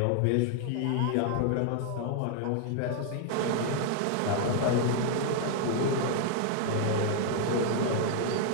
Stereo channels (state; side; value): different; both; correlation 0.00